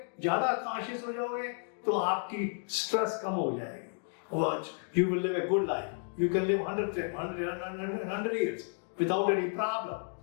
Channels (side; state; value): right; silent; 56 dB below the other